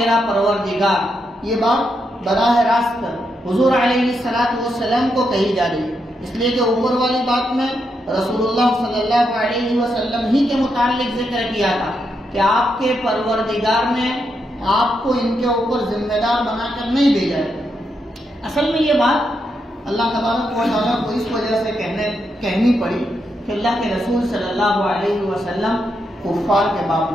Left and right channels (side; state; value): both; normal; correlation 0.82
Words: پروردگار، یہ بات براہ راست حضور علیہ السلام کو کہی جا رہی ہے، اس لیے کہ اوپر والی بات میں رسول اللہ صلی اللہ علیہ وسلم ہی کے متعلق ذکر کیا تھا کہ آپ کے پروردگار نے آپ کو ان کے اوپر ذمہ دار بنا کر نہیں بھیجا ہے۔ اصل میں یہ بات اللہ تبارک و تعالیٰ کو اس وجہ سے کہنی پڑی کہ اللہ کے رسول صلی اللہ علیہ وسلم کفار کے باب